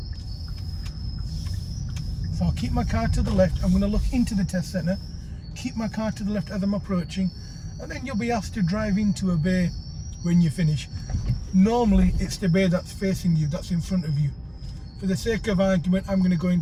So I'll keep my car to the left. I'm going to look into the test centre, keep my car to the left as I'm approaching, and then you'll be asked to drive into a bay when you finish. Normally it's the bay that's facing you, that's in front of you. For the sake of argument, I'm going to go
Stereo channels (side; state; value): both; identical; correlation 1.00